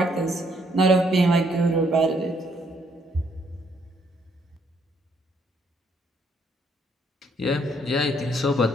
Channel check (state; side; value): normal; both; correlation 0.69